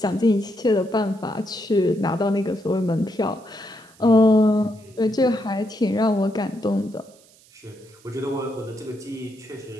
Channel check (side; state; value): right; noise; hiss, 28 dB below the sound